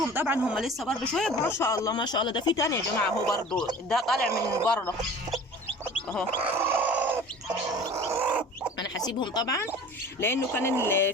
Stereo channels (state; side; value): normal; both; correlation 0.42